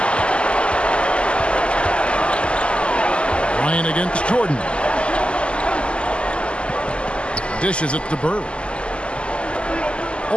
Ryan against Jordan. Dishes it to Bird.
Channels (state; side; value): late; right; 0.053 ms